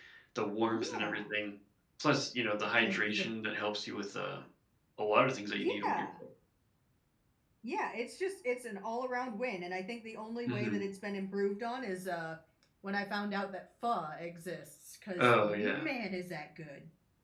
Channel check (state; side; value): identical; both; correlation 1.00